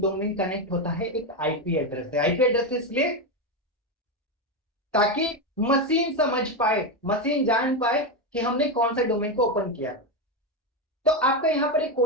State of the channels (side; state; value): both; normal; correlation 0.10